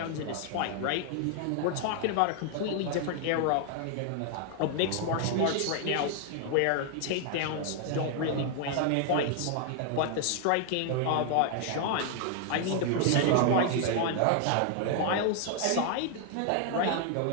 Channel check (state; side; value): different; both; correlation 0.00